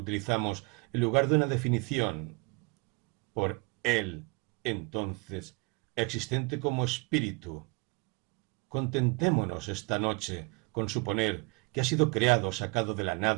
en lugar de una definición. Por él, entonces, existente como espíritu. Contentémonos esta noche con suponer que ha sido creado, sacado de la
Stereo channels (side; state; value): left; quieter; 29.5 dB